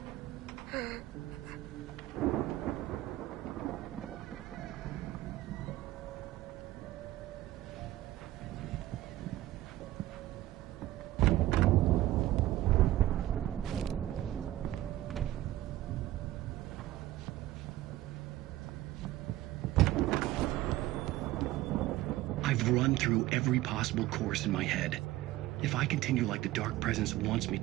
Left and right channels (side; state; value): left; quieter; 15.6 dB